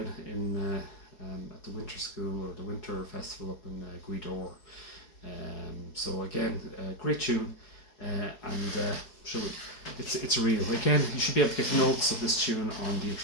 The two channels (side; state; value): right; late; 4.7 ms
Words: at the winter school, or the winter festival up in Guidor. So again, great tune, it's real. Again, you should be able to get notes of this tune on the